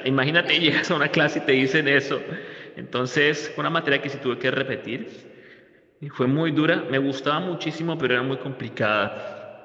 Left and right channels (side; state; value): both; identical; correlation 1.00